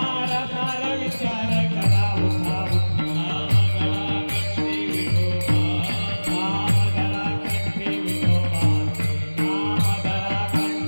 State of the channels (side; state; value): both; inverted; correlation -1.00